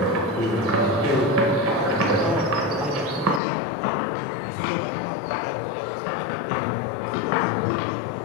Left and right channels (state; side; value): drops out; right; at 3.4 s